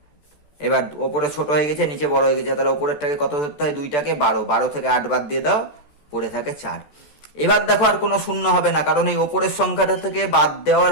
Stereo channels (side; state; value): right; late; 14 ms